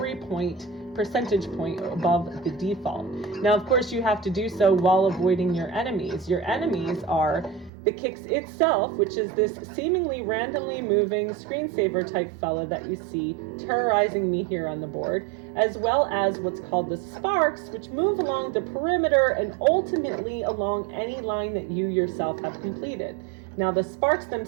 percentage point above the default. Now, of course, you have to do so while avoiding your enemies. Your enemies are the Qix itself, which is this seemingly randomly moving screensaver type fella that you see terrorizing me here on the board, as well as what's called the sparks, which move along the perimeter and ultimately along any line that you yourself have completed. Now, the sparks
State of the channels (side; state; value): left; drops out; at 7.7 s